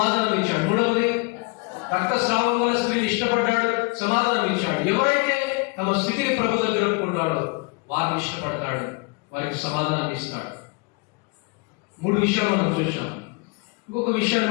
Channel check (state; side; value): quieter; right; 28.8 dB